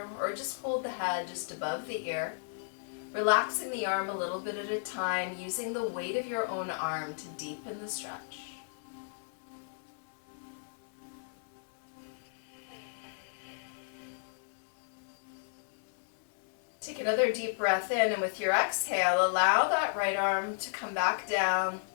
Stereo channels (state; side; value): silent; right; 56 dB below the other